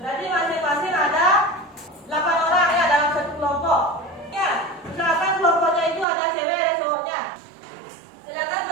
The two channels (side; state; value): left; drops out; at 6.1 s